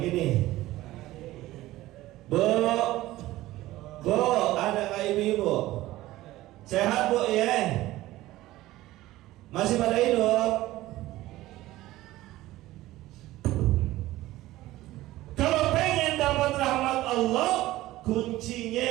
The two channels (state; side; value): quieter; left; 16.6 dB